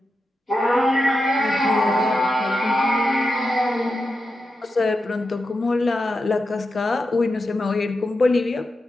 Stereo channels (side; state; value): both; normal; correlation 0.89